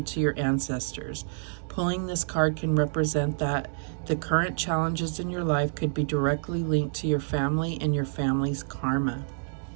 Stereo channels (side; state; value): left; silent; digital silence